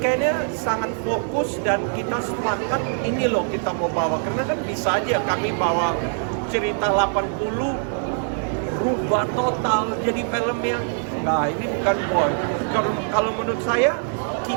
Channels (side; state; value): left; silent; 62 dB below the other